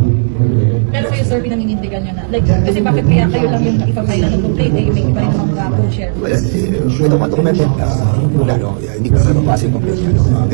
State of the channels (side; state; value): left; silent; digital silence